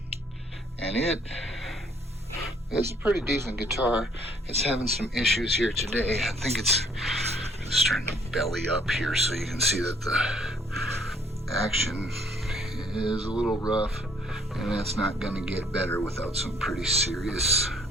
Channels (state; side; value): normal; both; correlation 0.62